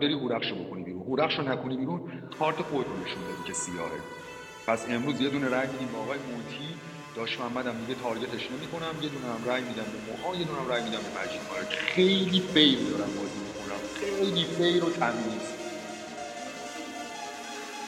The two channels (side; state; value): both; identical; correlation 1.00